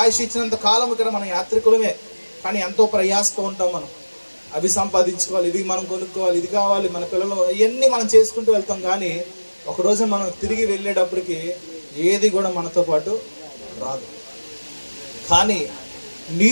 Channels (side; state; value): both; inverted; correlation -1.00